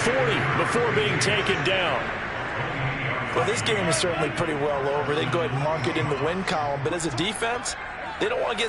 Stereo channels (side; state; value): both; identical; correlation 1.00